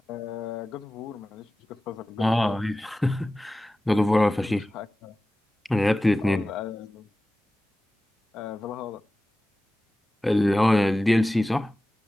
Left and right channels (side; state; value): both; normal; correlation 0.96